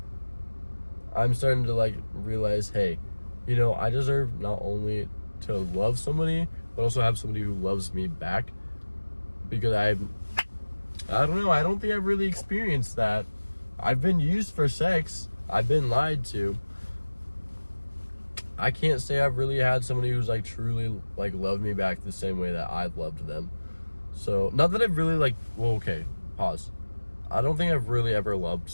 I'm starting to, like, realize, hey, you know, I deserve not only to love somebody, but also have somebody who loves me back. Because I don't know, I don't think I've really experienced that. I've been used for sex. I've been lied to. I can't say I've really had somebody who's, like, truly, like, loved me back the same way that I've loved them. So, not that I've really, like, well, okay, pause. I don't think I've really ever loved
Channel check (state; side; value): inverted; both; correlation -1.00